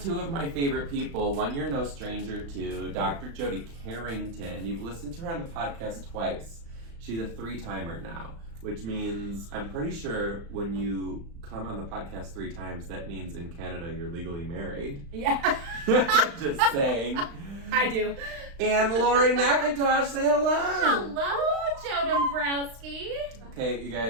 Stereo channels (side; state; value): left; late; 35 ms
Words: two of my favorite people, one you're no stranger to, Dr. Jody Carrington. You've listened to her on the podcast twice. She's a 3-timer now, which means I'm pretty sure when you come on the podcast 3 times, that means in Canada you're legally married. Yeah. Just saying. I do. And Laurie McIntosh, say hello. Hello, Joe Dombrowski. Okay, you